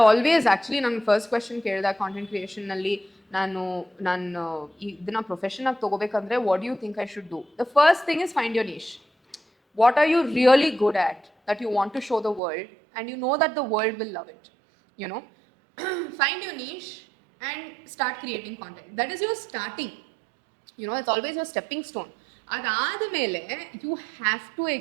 always actually ನನ್ನ first question ಕೇಳಿದ content ಕ್ರಿಯೇಷನ್ನಲ್ಲಿ, ನಾನು ಇದನ್ನ profession ಆಗಿ ತಗೋಬೇಕಂದ್ರೆ what you think I should do? The first thing is find your niche. What are you really good at that you want to show the world and you know that the world will love it, you know. Find your niche and start creating content. That is your starting, you know, it's always your stepping stone. ಅದಾದ ಮೇಲೆ you have to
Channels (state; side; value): drops out; left; at 12.4 s